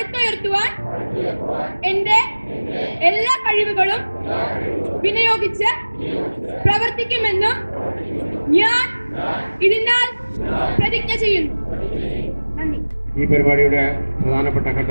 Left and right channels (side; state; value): both; inverted; correlation -1.00